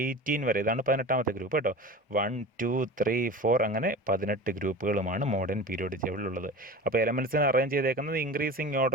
18 വരെ, ഇതാണ് 18ാമത്തെ ഗ്രൂപ്പ് കേട്ടോ. 1 2 3 4 അങ്ങനെ 18 ഗ്രൂപ്പുകളുമാണ് മോഡേൺ പീരിയോഡിക് ടേബിളിലുള്ളത്. അപ്പോൾ എലമെൻറ്റ്സിനെ അറേഞ്ച് ചെയ്തേക്കുന്നത് ഇൻക്രീസിങ്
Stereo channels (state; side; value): normal; both; correlation 0.34